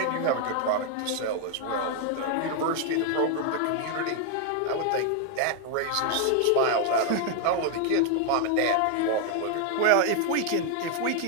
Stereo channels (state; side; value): different; both; correlation 0.00